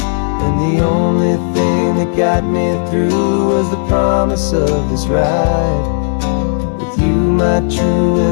And the only thing that got me through was the promise of this ride, with you, my true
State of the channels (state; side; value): silent; right; 70 dB below the other